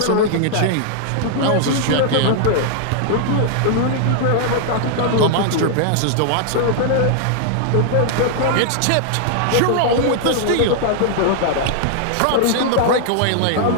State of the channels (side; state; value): both; different; correlation -0.01